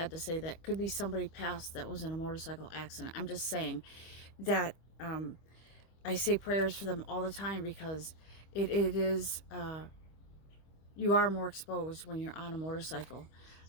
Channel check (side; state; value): right; late; 25 ms